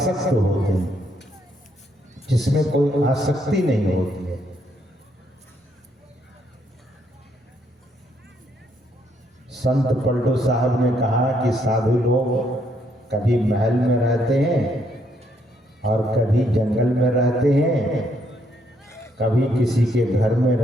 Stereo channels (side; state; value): both; normal; correlation 0.72